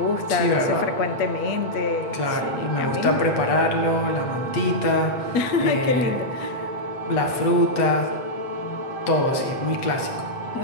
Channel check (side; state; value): right; late; 8.2 ms